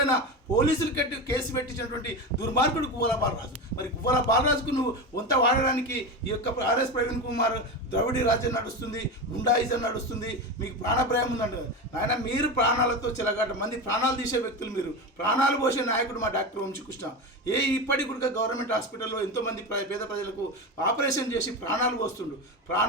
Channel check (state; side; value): normal; both; correlation 0.21